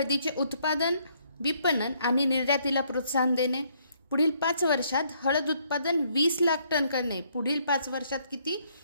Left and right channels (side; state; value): both; inverted; correlation -0.69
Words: उत्पादन, विपणन आणि निर्यातीला प्रोत्साहन देणे. पुढील 5 वर्षात हळद उत्पादन 20 लाख टन करणे. पुढील 5 वर्षात किती?